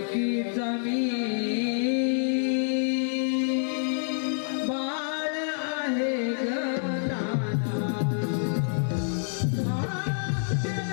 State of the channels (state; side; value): silent; right; 60 dB below the other